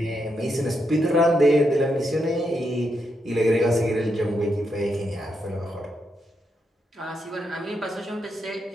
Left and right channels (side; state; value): both; normal; correlation 0.82